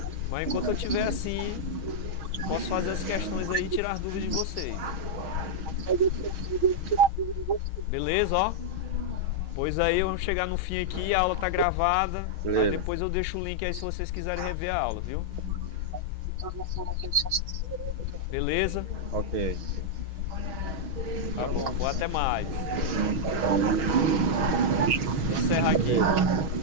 Mas enquanto eu estiver assim, posso fazer as questões aí e tirar as dúvidas de vocês. Beleza, ó? Pois aí vamos chegar no fim aqui, a aula tá gravada. Aí depois eu deixo o link aí se vocês quiserem rever a aula, viu? Beleza? Ok. Tá bom, vou até mais. Vou encerrar aqui.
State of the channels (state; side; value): late; left; 6.3 ms